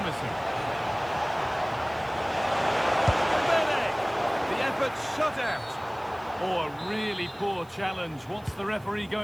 The effort shut out. Oh, a really poor challenge. What's the referee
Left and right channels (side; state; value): right; noise; hiss, 28 dB below the sound